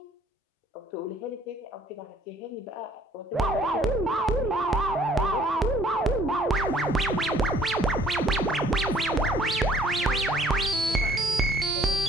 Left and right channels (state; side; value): normal; both; correlation 0.60